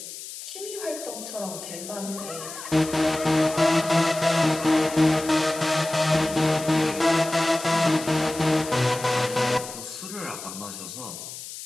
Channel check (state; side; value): noise; left; hiss, 11 dB below the sound